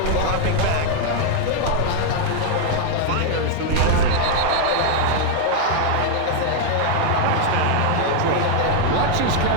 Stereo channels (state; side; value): different; both; correlation 0.00